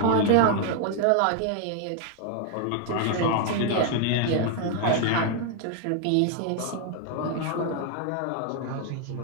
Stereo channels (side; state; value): both; different; correlation 0.00